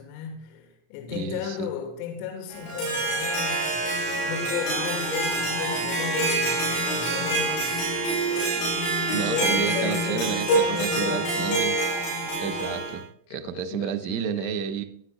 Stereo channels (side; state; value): right; late; 35 ms